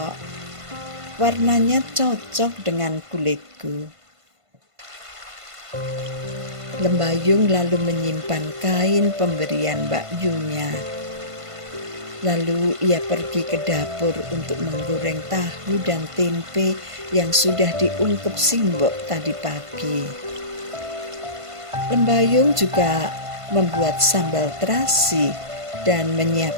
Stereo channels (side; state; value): left; late; 1.5 ms